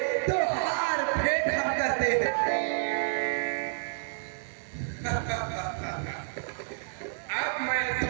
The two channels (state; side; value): silent; left; digital silence